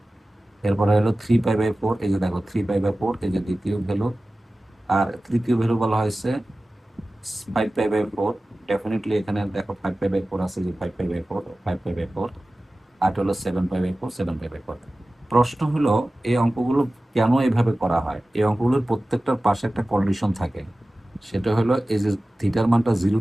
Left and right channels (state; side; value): normal; both; correlation 0.96